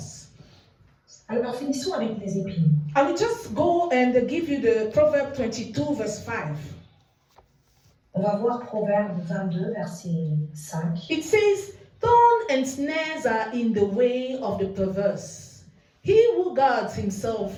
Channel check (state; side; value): identical; both; correlation 1.00